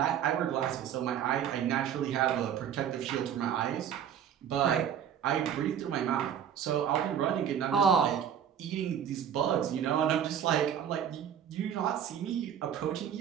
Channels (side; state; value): left; quieter; 9.0 dB